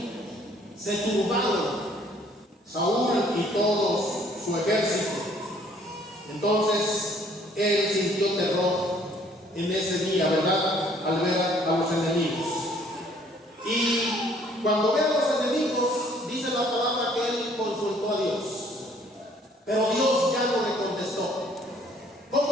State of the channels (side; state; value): both; normal; correlation 0.60